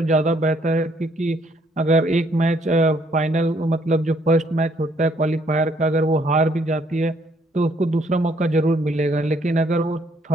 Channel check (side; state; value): both; normal; correlation 0.67